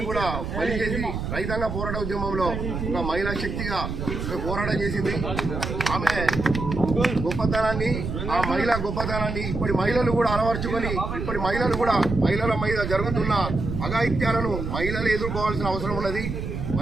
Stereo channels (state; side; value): noise; right; rumble, 4 dB below the sound